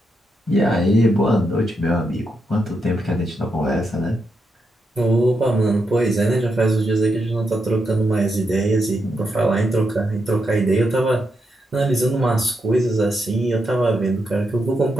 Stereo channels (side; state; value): both; normal; correlation 0.83